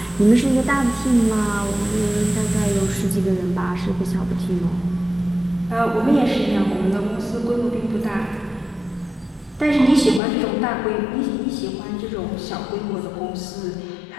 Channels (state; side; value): drops out; right; at 10.2 s